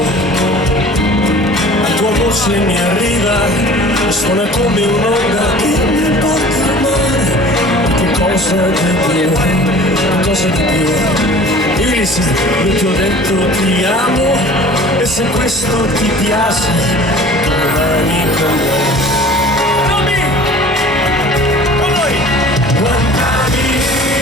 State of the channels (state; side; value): normal; both; correlation 0.45